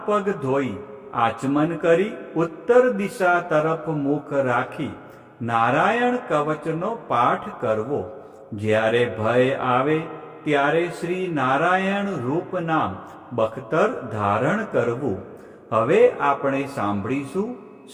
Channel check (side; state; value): both; identical; correlation 1.00